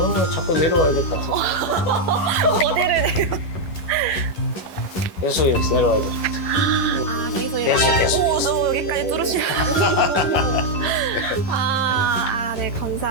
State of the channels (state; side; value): late; right; 11 ms